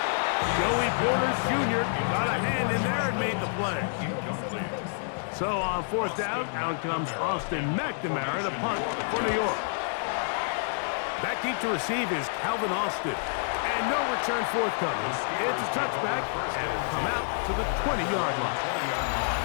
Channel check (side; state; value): right; silent; digital silence